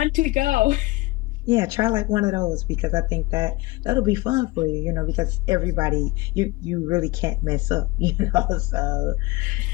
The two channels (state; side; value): quieter; right; 21.3 dB